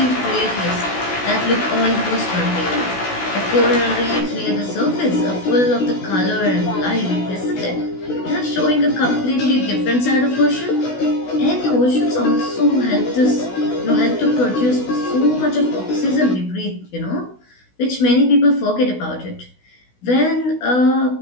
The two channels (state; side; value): late; right; 16 ms